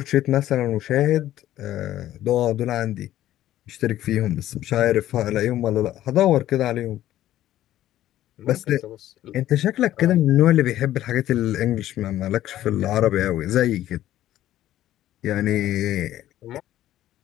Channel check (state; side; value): quieter; right; 13.4 dB